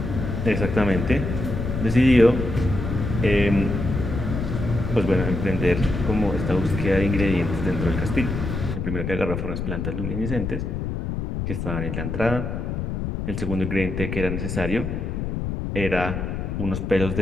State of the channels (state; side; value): noise; left; rumble, 3 dB below the sound